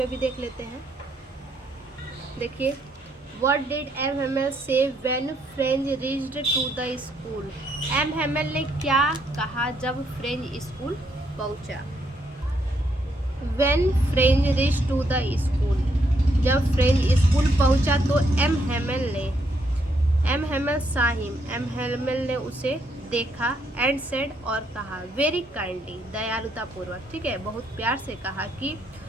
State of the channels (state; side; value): normal; both; correlation 0.74